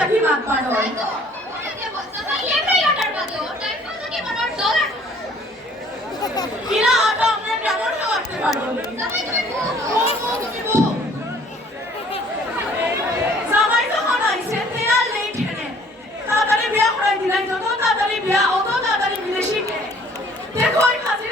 লাগবার হয় কিনা আটা আমরা কেমন করতে পারবো জামাই যখন আইছে তেয়ার নেই ঠেনে তাড়াতাড়ি বিয়া করাই দিলাই যত তাড়াতাড়ি বিয়া অত তাড়াতাড়ি বিদেশি কে দেখো ওই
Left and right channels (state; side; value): normal; both; correlation 0.56